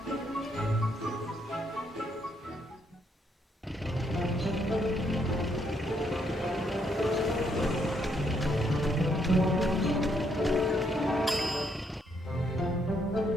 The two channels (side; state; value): both; normal; correlation 0.73